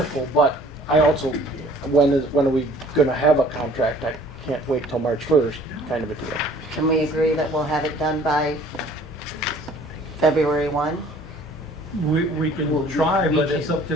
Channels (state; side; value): normal; both; correlation 0.53